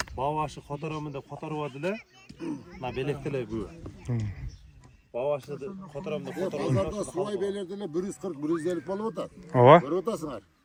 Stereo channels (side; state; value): both; identical; correlation 1.00